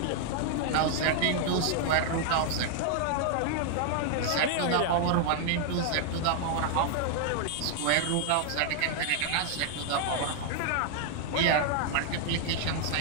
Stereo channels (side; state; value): both; different; correlation 0.00